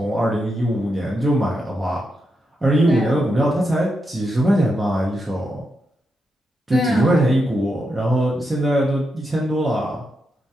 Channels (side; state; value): both; normal; correlation 0.84